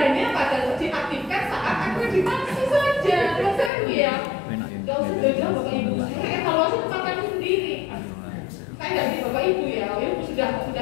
pada diaktifkan saat akreditasi saja. Kan ya. Gak usah jauh-jauh Bapak Ibu. Saya evaluasi tempat kami sendiri. Saya nggak di Bapak Ibu ya. Bapak Ibu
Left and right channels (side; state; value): right; drops out; at 3.7 s